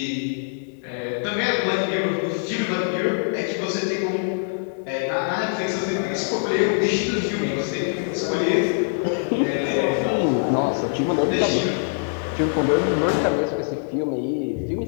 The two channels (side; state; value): right; silent; digital silence